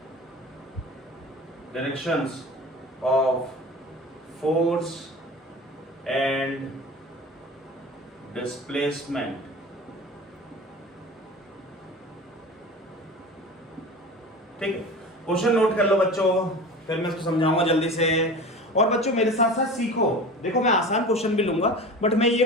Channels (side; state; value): both; normal; correlation 0.35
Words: directions of force and displacement। ठीक है, question note कर लो बच्चों, फिर मैं इसको समझाऊंगा जल्दी से। और बच्चों मेरे साथ साथ सीखो, देखो मैं आसान क्वेश्चन भी लूंगा, बट मैं ये